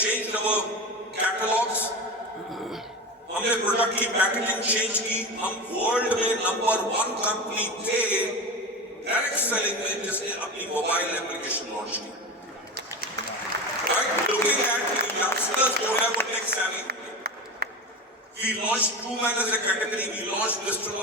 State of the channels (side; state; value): both; normal; correlation 0.25